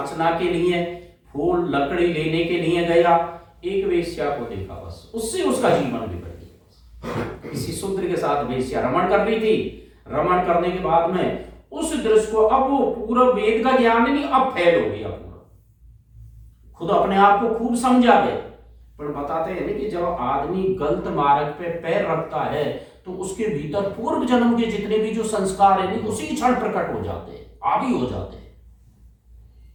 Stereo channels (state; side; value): identical; both; correlation 1.00